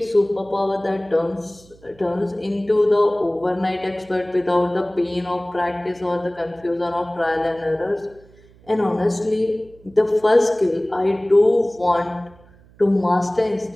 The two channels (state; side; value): noise; right; hum, 26 dB below the sound